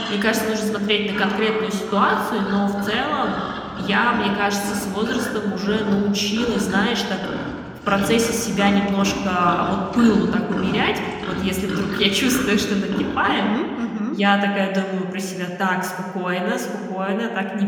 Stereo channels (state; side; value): identical; both; correlation 1.00